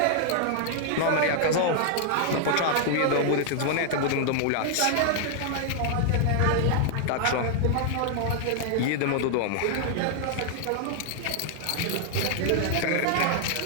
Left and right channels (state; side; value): different; both; correlation 0.00